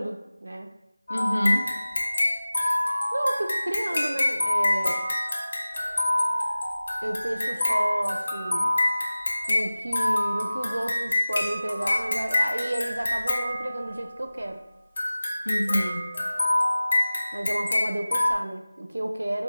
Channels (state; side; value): inverted; both; correlation -0.98